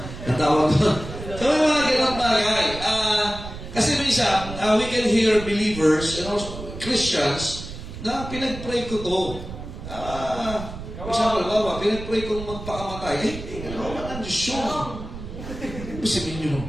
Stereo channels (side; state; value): right; noise; rumble, 10 dB below the sound